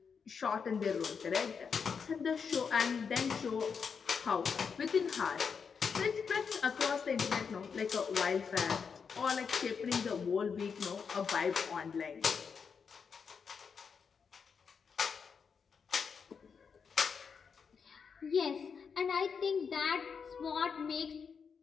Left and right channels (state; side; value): quieter; right; 6.1 dB